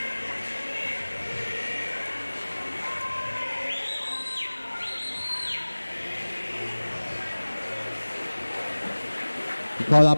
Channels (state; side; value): inverted; both; correlation -1.00